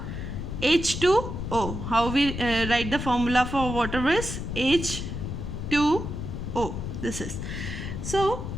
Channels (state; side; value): noise; left; rumble, 5 dB below the sound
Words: H2O. How we write the formula for water is H2O. This is. So,